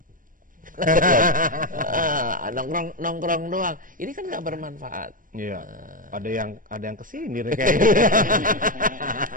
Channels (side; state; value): left; late; 0.40 ms